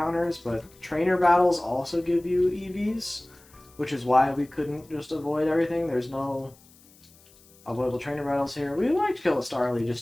but trainer battles also give you EVs, which is why we couldn't just avoid everything. There's no avoidable trainer battles here. We like to kill a Starly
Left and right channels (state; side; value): noise; left; hiss, 27 dB below the sound